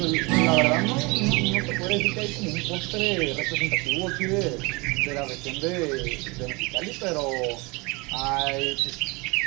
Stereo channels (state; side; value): quieter; left; 26.9 dB